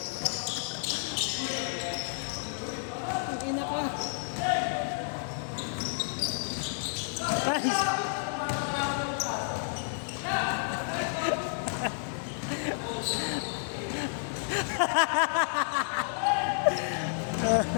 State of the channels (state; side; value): silent; right; digital silence